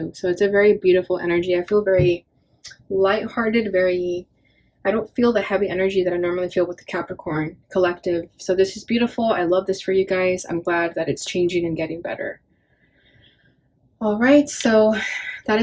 So it's a very beautiful energy. I feel very lighthearted, I don't feel the heavy energy that I normally feel with the Capricorn collective. So this is beautiful. I love this for you guys. I'm glad that it's changing and getting better. All right, so that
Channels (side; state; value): both; identical; correlation 1.00